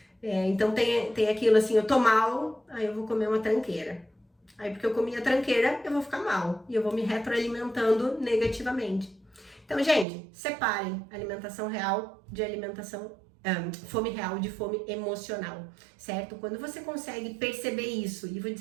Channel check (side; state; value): left; drops out; at 10.1 s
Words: então tem aquilo assim, eu tô mal, aí eu vou comer uma tranqueira. Aí porque eu comi a tranqueira, eu vou ficar mal e eu vou me retroalimentando negativamente. Então, gente, separem alimentação real de fome real de fome emocional, certo? Quando você consegue perceber isso, e vou